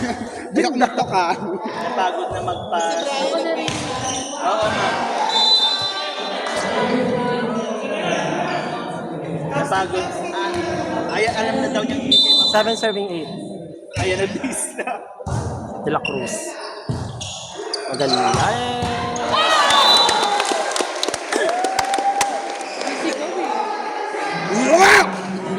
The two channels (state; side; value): identical; both; correlation 1.00